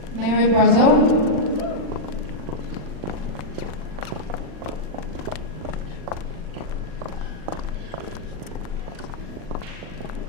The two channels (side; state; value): left; late; 40 ms